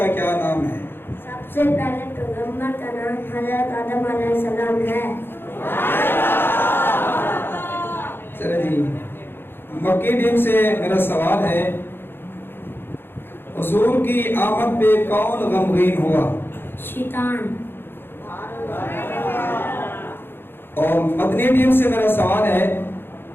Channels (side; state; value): right; late; 0.10 ms